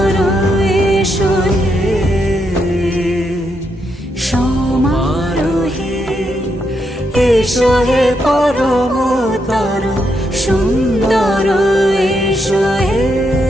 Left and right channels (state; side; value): normal; both; correlation 0.80